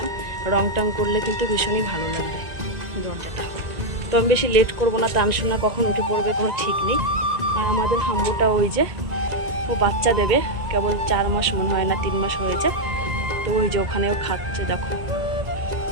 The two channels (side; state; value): left; late; 1.9 ms